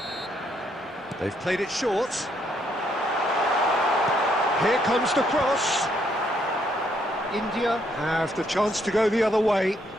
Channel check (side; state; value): both; normal; correlation 0.72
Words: They've played it short. Here comes the cross. India have the chance to go the other way.